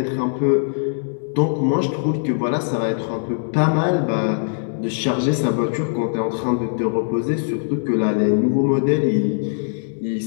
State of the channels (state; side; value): silent; right; digital silence